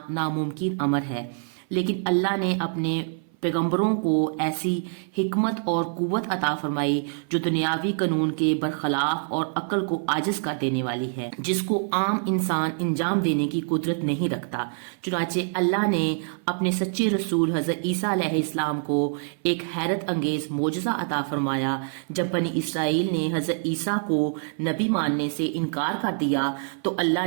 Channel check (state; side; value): silent; left; 57 dB below the other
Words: नामुमकिन अमर है, लेकिन अल्लाह ने अपने पैगंबरों को ऐसी हिकमत और कुव्वत अता फरमाई जो दुनियावी कानून के बरखिलाफ और अक्ल को आजिज कर देने वाली है, जिसको आम इंसान अंजाम देने की कुदरत नहीं रखता। चुनाचे अल्लाह ने अपने सच्चे रसूल हज़रत ईसा अलैहिस्सलाम को एक हैरत अंगेज मौजज़ा अता फरमाया। जब बनी इसराइल ने हज़रत ईसा को नबी मानने से इनकार कर दिया तो अल्लाह